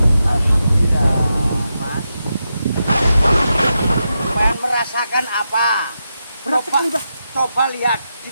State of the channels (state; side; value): inverted; both; correlation -0.87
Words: Alhamdulillah, Mas. Pengen merasakan apa? Berat sekali, Mbak. Coba lihat di